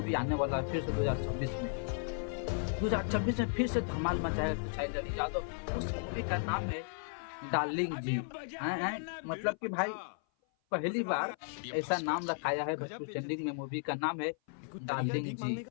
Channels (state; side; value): silent; right; 54 dB below the other